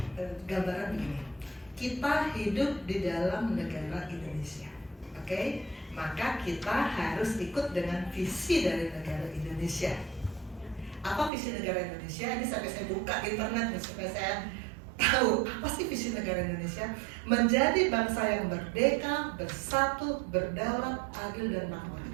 gambaran begini. Kita hidup di dalam negara Indonesia, oke? Maka kita harus ikut dengan visi dari negara Indonesia. Apa visi negara Indonesia? Ini sampai saya buka internet supaya saya tahu apa sih visi negara Indonesia. Menjadi bangsa yang merdeka, bersatu, berdaulat, adil dan makmur.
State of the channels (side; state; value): left; drops out; at 11.3 s